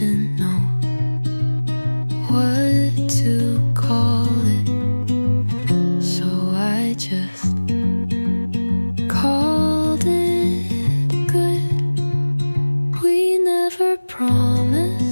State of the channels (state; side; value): inverted; both; correlation -1.00